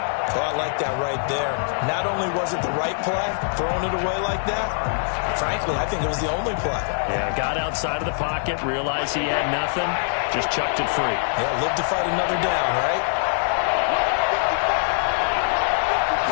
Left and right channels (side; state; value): right; silent; digital silence